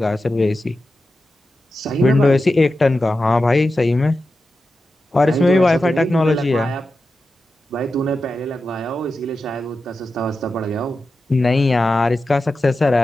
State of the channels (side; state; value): both; normal; correlation 0.91